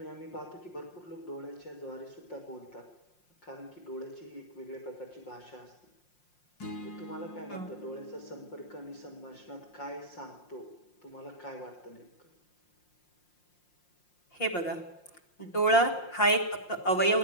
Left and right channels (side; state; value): right; late; 5.6 ms